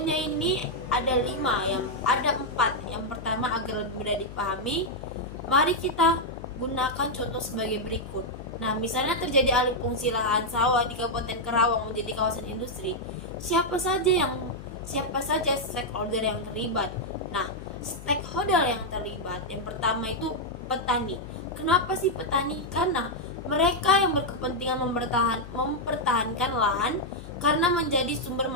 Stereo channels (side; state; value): left; noise; hum, 13 dB below the sound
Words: ini ada 4. Yang pertama, agar lebih mudah dipahami, mari kita gunakan contoh sebagai berikut. Nah, misalnya terjadi alih fungsi lahan sawah di Kabupaten Karawang menjadi kawasan industri. Siapa saja stakeholder yang terlibat? Nah, stakeholder yang terlibat yang pertama itu petani. Kenapa sih petani? Karena mereka yang berkepentingan mempertahankan lahan karena menjadi sumber